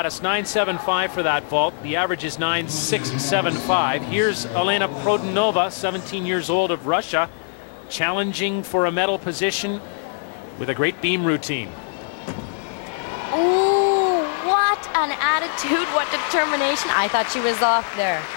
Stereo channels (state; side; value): silent; right; digital silence